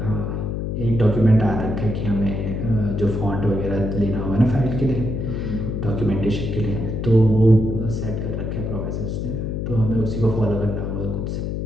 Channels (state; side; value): noise; left; hum, 2 dB below the sound